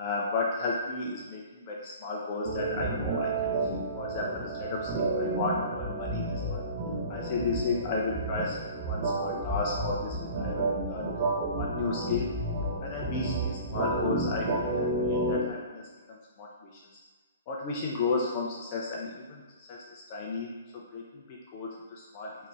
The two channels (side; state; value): both; inverted; correlation -0.41